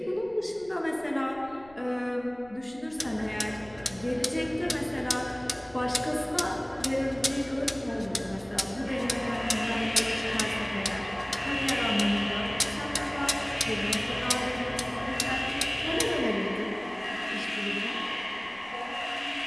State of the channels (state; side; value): noise; left; rumble, 24 dB below the sound